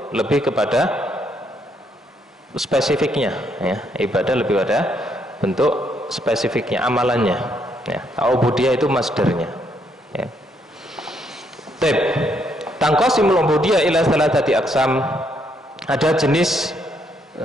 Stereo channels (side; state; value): both; normal; correlation 0.73